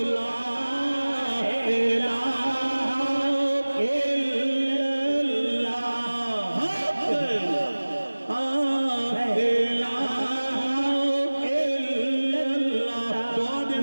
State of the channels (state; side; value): inverted; both; correlation -1.00